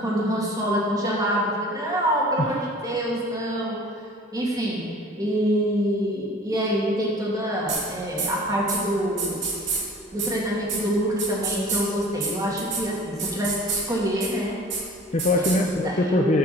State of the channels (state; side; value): normal; both; correlation 0.46